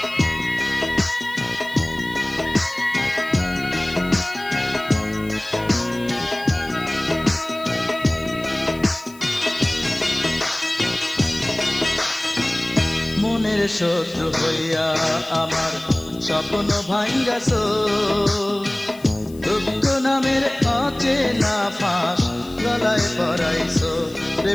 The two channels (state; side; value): noise; left; hiss, 23 dB below the sound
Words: মনের শত্রু হইয়া আমার স্বপ্ন ভাঙ্গাছো, দুঃখ নামের অচেনা ফাঁস গলায় পরাইছো রে